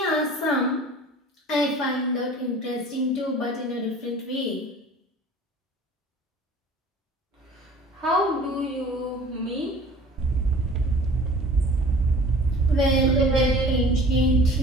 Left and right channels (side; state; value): both; normal; correlation 0.46